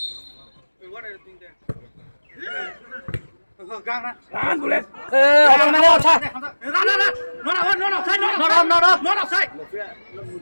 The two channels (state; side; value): inverted; both; correlation -1.00